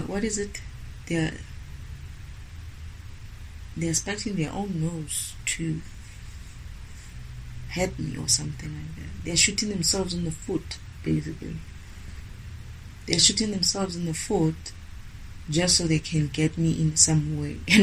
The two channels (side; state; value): both; identical; correlation 1.00